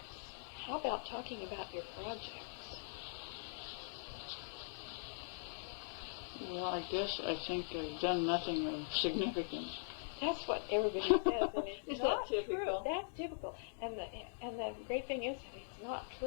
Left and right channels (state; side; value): silent; right; digital silence